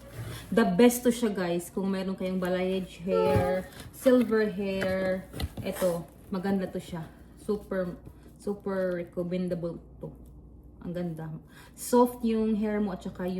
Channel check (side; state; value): both; identical; correlation 1.00